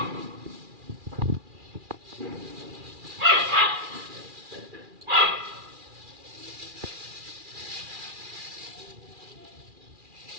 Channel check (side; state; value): left; late; 2.4 ms